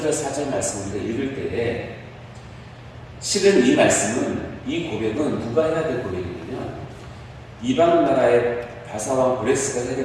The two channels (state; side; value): identical; both; correlation 1.00